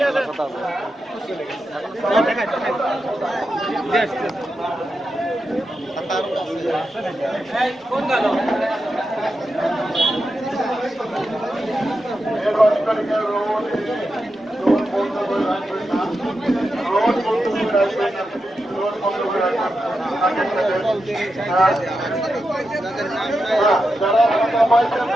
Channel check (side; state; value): both; normal; correlation 0.88